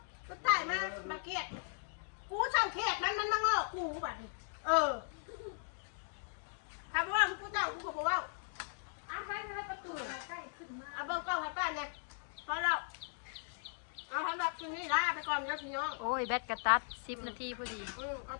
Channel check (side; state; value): right; silent; digital silence